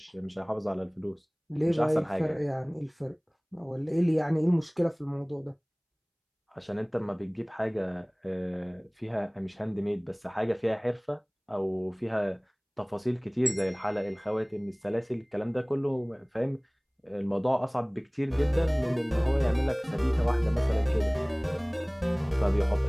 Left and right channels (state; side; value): identical; both; correlation 1.00